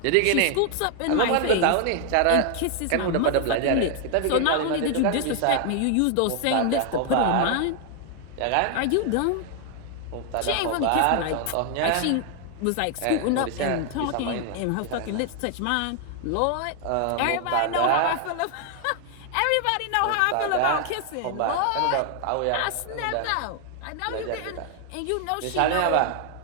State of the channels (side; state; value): both; different; correlation 0.00